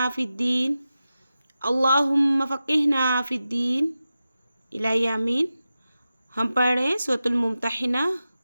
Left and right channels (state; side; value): inverted; both; correlation -0.93